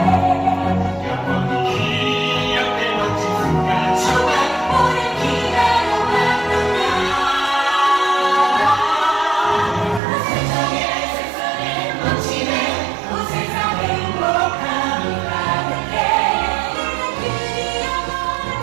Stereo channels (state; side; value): drops out; left; at 10.0 s